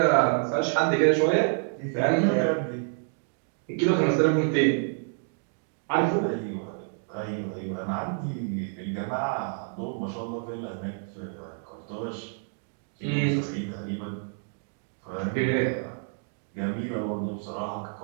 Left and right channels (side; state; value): left; silent; 59 dB below the other